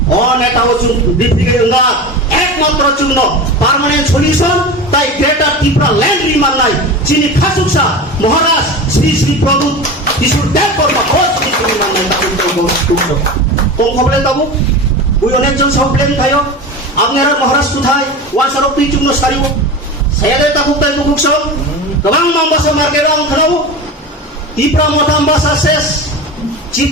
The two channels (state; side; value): normal; both; correlation 0.28